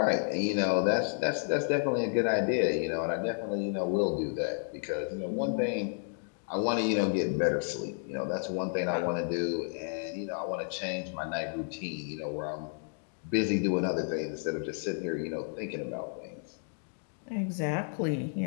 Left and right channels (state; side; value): silent; right; 57 dB below the other